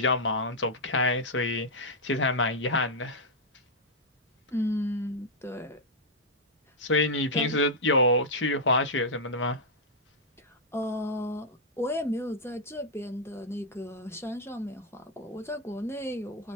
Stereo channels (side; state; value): both; normal; correlation -0.05